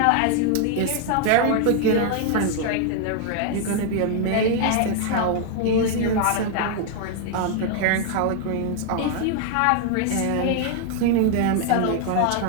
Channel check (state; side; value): different; both; correlation 0.00